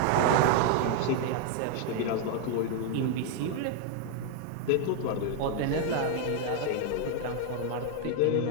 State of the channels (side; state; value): both; different; correlation 0.00